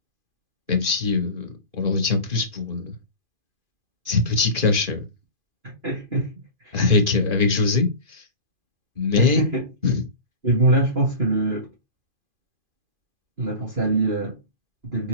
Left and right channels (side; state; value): left; late; 2.5 ms